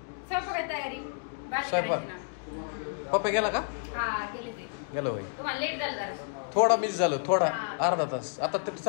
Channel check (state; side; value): silent; right; digital silence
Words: स्वयंपाकाची तयारी. स्वयंपाक पप्पा गेला का? हा गेले ते. गेलो होय. तुम्हाला लेट झालं जरा. थोडा मिस झालं, थोडा अर्धा तास. आता ते